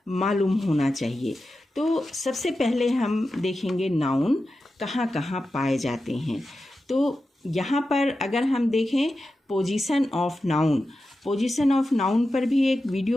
मालूम होना चाहिए। तो सबसे पहले हम देखेंगे नाउन कहाँ कहाँ पाए जाते हैं। तो यहाँ पर अगर हम देखें position of noun, position of noun पर भी एक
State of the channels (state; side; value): normal; both; correlation 0.91